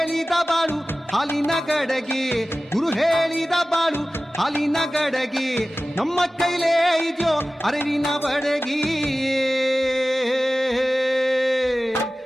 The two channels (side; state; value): both; normal; correlation 0.96